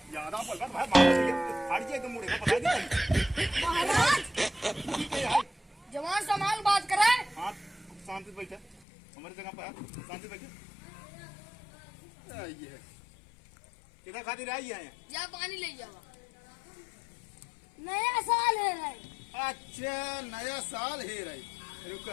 ज्यादा बोल भाई फाड़ के मुड़े का पता नहीं। महाराज जवान संभाल बात करे। हाँ शांति से बैठे, हमारी जगह पर शांति से बैठे। ये है किधर खातिर आई है? जा पानी ले जाओ। नया साल है भाई। अच्छा नया साल है रही,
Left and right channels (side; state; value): right; drops out; at 8.8 s